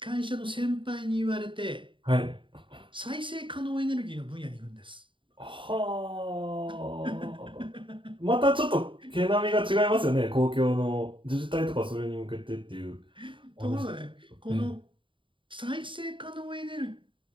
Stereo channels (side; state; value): left; late; 0.24 ms